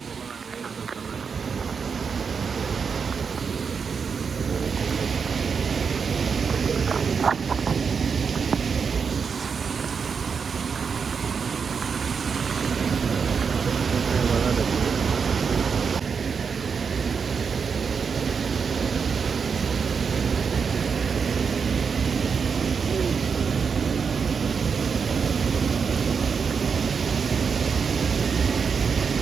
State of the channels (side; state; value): left; quieter; 5.9 dB